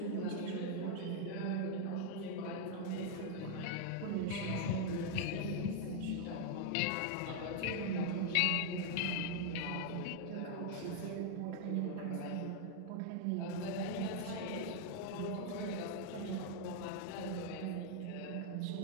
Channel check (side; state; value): both; different; correlation 0.00